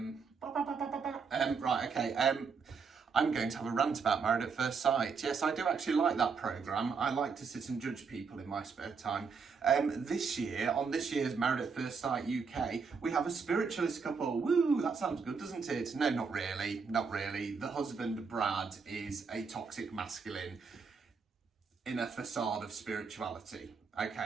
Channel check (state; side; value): quieter; left; 5.4 dB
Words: Right, okay, I'm going to have a rant about Married at First Sight. Yes, I do actually like that programme. I like to sit and judge people in my spare time. This year, on this year's Married at First Sight UK, we have a spiritualist couple. Woo, that sounds good, doesn't it? No, not really, not really. The husband, Brad, is a toxic masculine in a facade of spirituality.